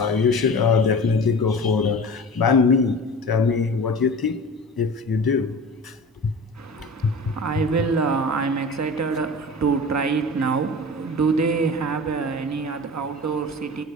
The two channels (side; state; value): both; normal; correlation 0.35